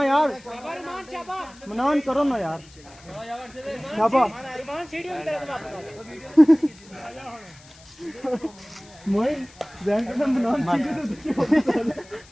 यार, मनान करो ना यार शाबा।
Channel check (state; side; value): noise; left; hiss, 24 dB below the sound